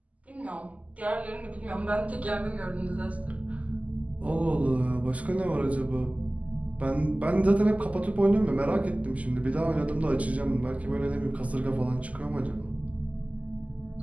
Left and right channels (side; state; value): left; late; 0.072 ms